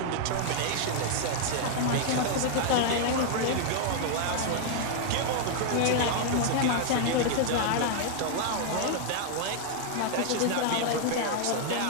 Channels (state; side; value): different; both; correlation -0.01